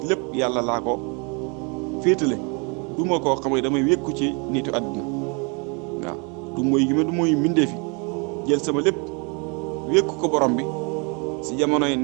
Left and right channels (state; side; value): quieter; left; 33.6 dB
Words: lépp yàlla laa ko féetale du ma koo xam ne damay wékku ci nitu àdduna waaw du mooy gi ma du mooy mbindee fi jël sama lépp wékku ko borom bi si jamono yi